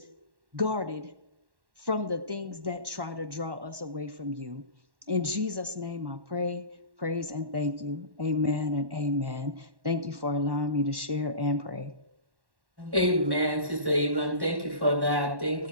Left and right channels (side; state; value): left; late; 1.1 ms